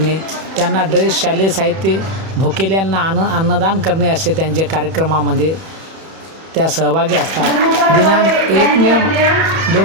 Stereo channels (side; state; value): left; late; 31 ms